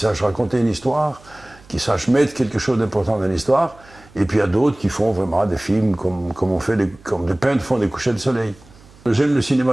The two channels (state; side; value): noise; right; hum, 25 dB below the sound